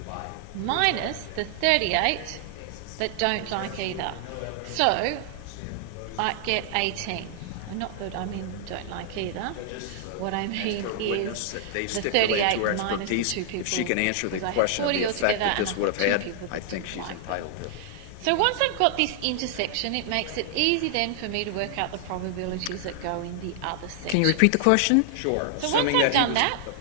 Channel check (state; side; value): different; both; correlation 0.00